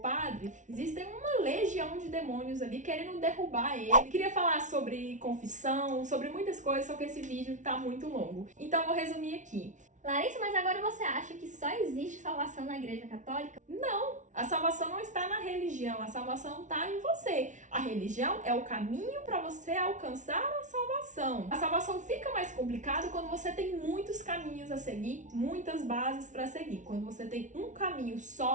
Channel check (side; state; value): left; late; 0.36 ms